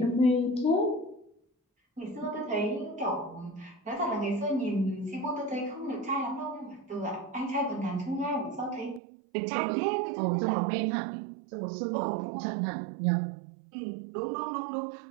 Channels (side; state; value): left; drops out; at 9.0 s